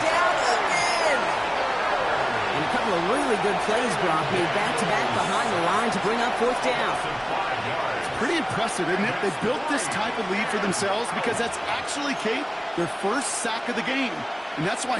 down again. And a couple of really good plays, Brock, made back-to-back behind the line to bring up 4th down. Pretty impressive, isn't it? They built this type of lead for themselves because that's actually, Kate, their first sack of the game. And that's why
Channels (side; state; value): both; identical; correlation 1.00